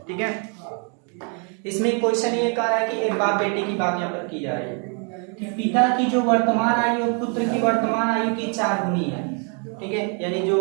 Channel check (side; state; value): left; quieter; 38.2 dB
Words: ठीक है। इसमें क्वेश्चन ये कह रहा है कि एक बाप बेटे की बात यहाँ पर की जा रही है कि पिता की जो वर्तमान आयु और पुत्र की वर्तमान आयु की 4 गुनी है, ठीक है। यानी जो